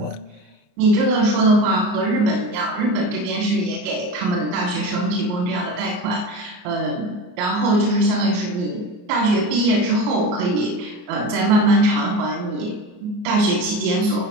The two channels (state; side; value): late; left; 34 ms